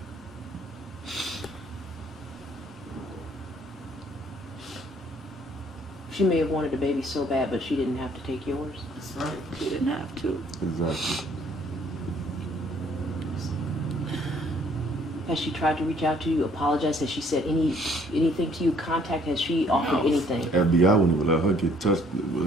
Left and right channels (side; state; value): both; normal; correlation 0.62